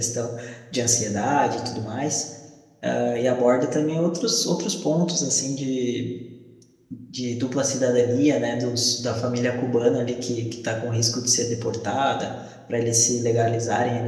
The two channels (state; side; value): identical; both; correlation 1.00